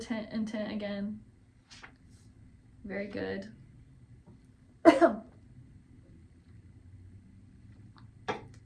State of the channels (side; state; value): both; identical; correlation 1.00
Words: Intent again. Very good.